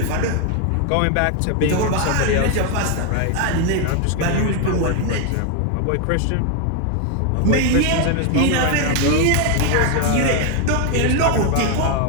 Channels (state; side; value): different; both; correlation 0.01